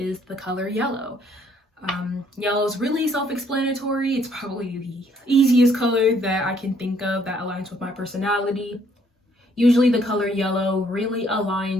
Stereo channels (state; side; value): normal; both; correlation 0.66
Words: the color yellow. Yellow is really self-explanatory. It's probably the easiest color that I can think of that aligns with my personality. Usually the color yellow really